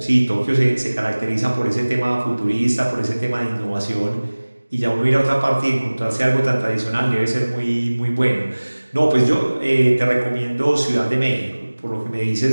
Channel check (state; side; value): inverted; both; correlation -1.00